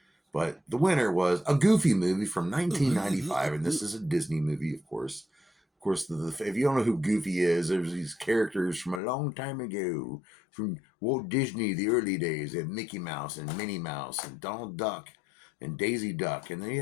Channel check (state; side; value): drops out; right; at 9.0 s